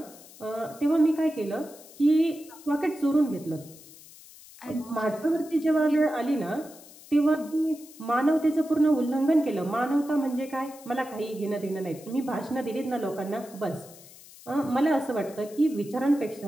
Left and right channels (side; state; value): left; noise; hiss, 20 dB below the sound